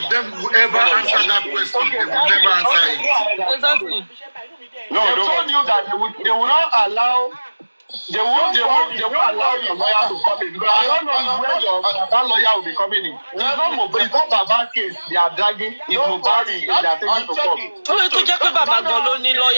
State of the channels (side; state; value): both; inverted; correlation -1.00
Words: them will ever answer that question. They will never answer it. Exactly. No, they told you that they will not allow. They won't allow your lawyer to come in because I don't know where that lawyer will be coming in. It's not Baba case they are dragging. It's Mubari they are taking to court. That is